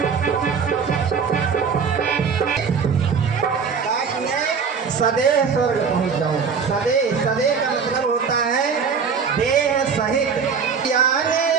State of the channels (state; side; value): quieter; left; 6.0 dB